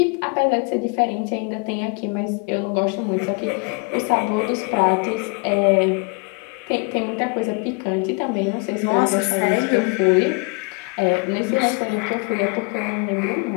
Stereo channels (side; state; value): right; quieter; 33.6 dB